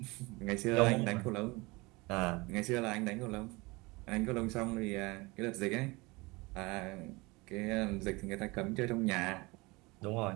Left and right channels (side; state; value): left; quieter; 24.3 dB